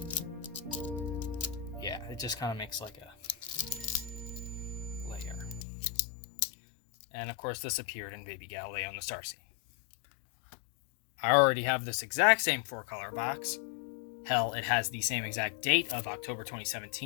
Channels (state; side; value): drops out; right; at 5.7 s